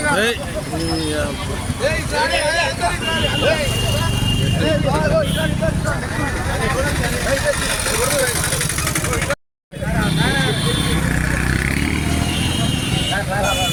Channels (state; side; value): identical; both; correlation 1.00